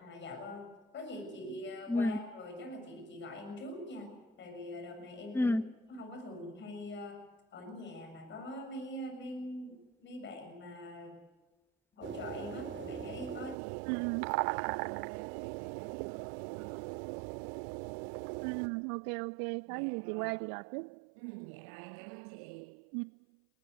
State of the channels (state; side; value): drops out; left; at 13.6 s